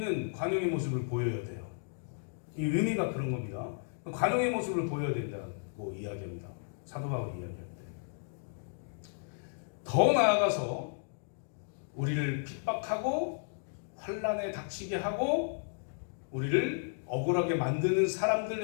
관용의 모습을 보여야 돼요. 이 의미가 그런 겁니다. 관용의 모습을 보여야 된다고 이야기합니다. 사도 바울이 이야기할 때. 더 나아가서 우리를 핍박하고 환난에 닥치게 하고 우리를 억울하게 만드는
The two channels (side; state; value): right; silent; digital silence